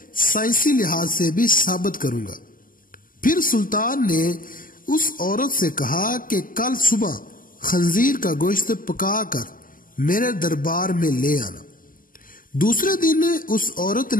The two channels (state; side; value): late; right; 0.41 ms